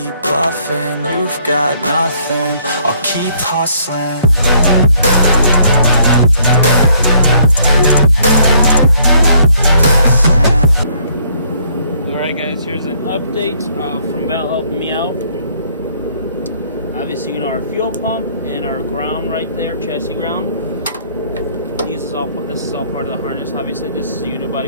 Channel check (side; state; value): both; inverted; correlation -0.65